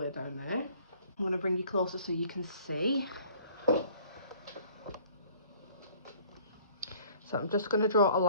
down there. I'm going to bring you closer so you can see. So I'm just going to draw a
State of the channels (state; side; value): inverted; both; correlation -0.54